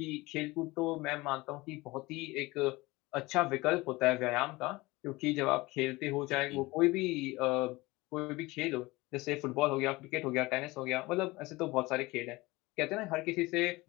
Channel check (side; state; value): right; quieter; 21.5 dB